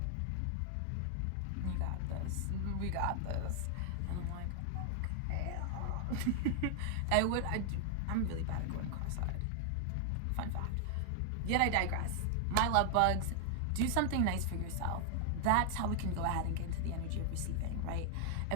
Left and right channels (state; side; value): different; both; correlation 0.00